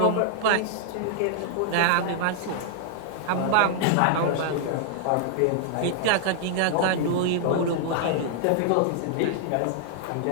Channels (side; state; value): both; different; correlation -0.01